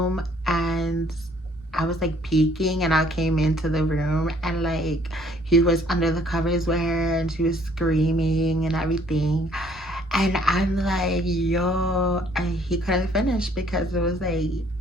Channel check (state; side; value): normal; both; correlation 0.61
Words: and I was like peeking, and I came into the room, and like he was under the covers with her, and she was screaming and everything, and I'm like, yo, and he couldn't finish because it was like